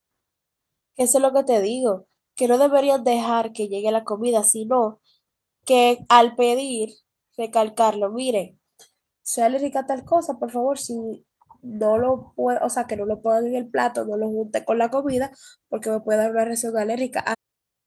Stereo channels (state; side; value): identical; both; correlation 1.00